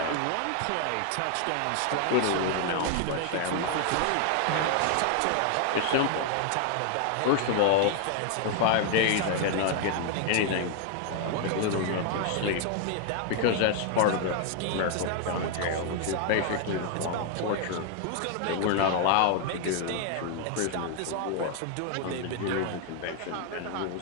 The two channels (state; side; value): different; both; correlation 0.01